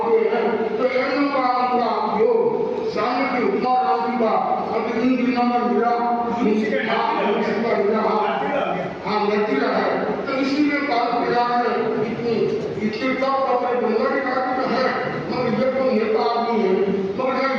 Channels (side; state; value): both; identical; correlation 1.00